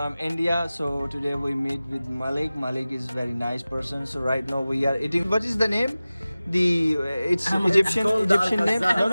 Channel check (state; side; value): inverted; both; correlation -0.97